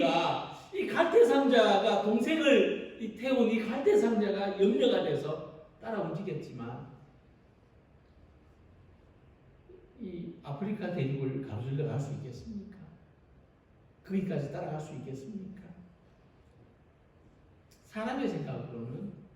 이 갈대상자가 동생을 태운 이 갈대상자가 염려가 돼서 따라 움직였지만 이 아프리카 대륙을 가로질러 갈 수 있겠습니까? 거기까지 따라갈 수 있겠습니까? 사람의 생각으로는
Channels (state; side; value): identical; both; correlation 1.00